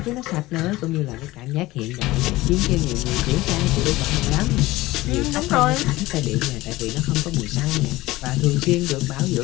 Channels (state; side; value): quieter; right; 18.6 dB